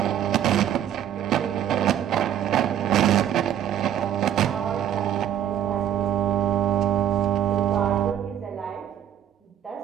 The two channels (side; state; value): left; quieter; 10.4 dB